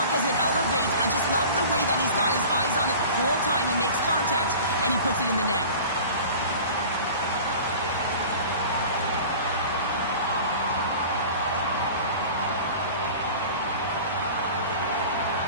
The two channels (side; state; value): both; inverted; correlation -0.40